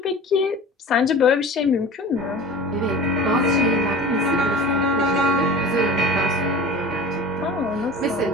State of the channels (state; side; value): normal; both; correlation 0.38